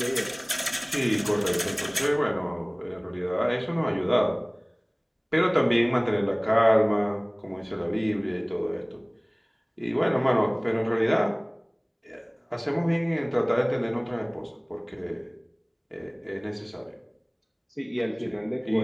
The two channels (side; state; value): both; identical; correlation 1.00